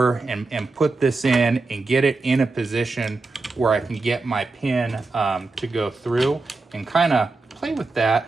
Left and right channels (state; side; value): quieter; left; 3.6 dB